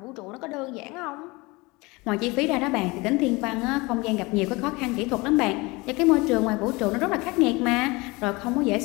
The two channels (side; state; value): right; quieter; 24.2 dB